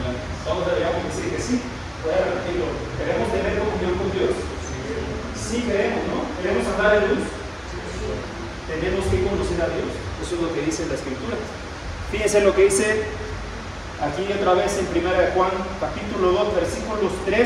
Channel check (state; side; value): identical; both; correlation 1.00